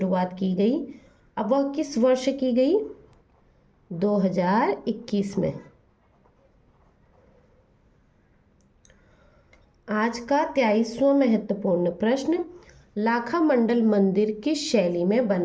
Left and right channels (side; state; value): both; identical; correlation 1.00